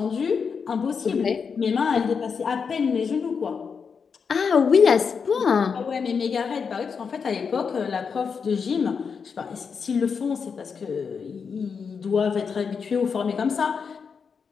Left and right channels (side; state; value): right; quieter; 5.9 dB